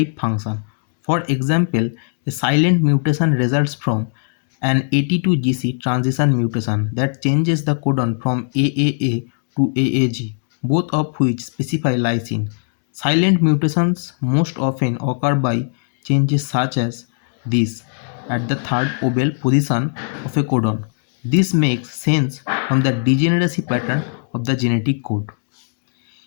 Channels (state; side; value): silent; right; digital silence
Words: function. For example, a silent mutation results from an AT2GC transition mutation that changes the codon from AAA to AAG, both of which specify lysine. Silent mutations most often occur by changes such as this at the third obel position of a codon. This makes sense from the degeneracy pattern of the genetic code.